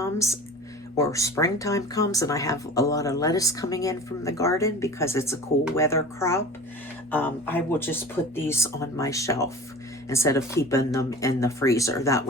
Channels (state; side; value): normal; both; correlation 0.38